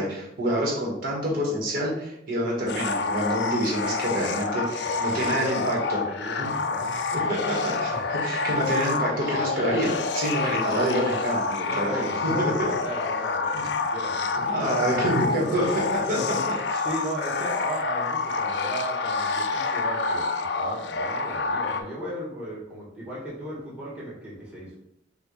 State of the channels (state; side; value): normal; both; correlation -0.03